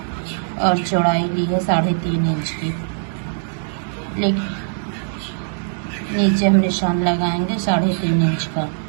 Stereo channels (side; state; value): left; silent; digital silence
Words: और चौड़ाई ली है 3.5 इंच की। लेकिन नीचे हम निशान लगाएंगे 3.5 इंच का